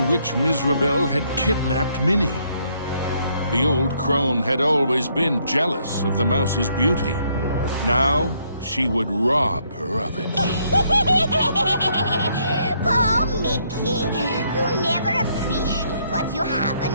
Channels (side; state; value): both; inverted; correlation -0.71